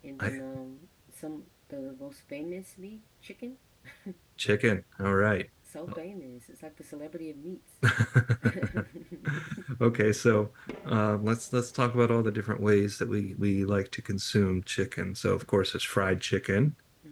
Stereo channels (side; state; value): both; identical; correlation 1.00